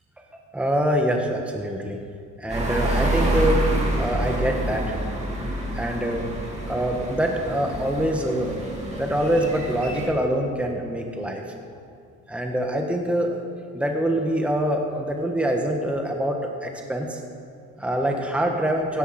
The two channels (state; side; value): normal; both; correlation 0.66